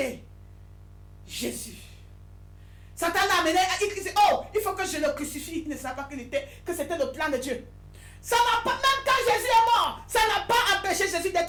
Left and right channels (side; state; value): both; identical; correlation 1.00